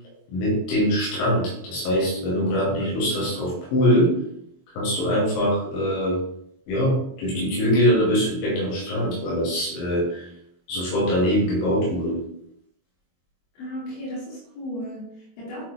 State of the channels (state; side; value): late; right; 22 ms